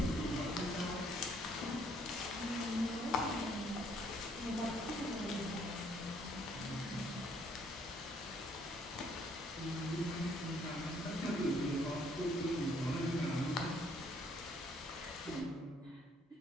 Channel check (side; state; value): both; normal; correlation 0.65